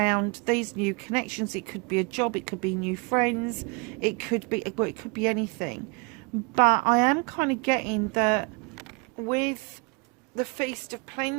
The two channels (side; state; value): left; quieter; 30.0 dB